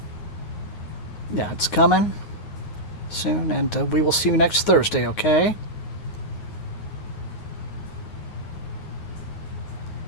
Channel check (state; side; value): late; right; 9.5 ms